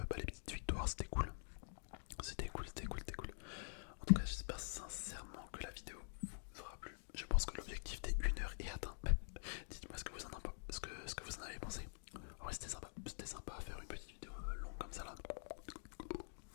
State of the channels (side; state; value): right; silent; digital silence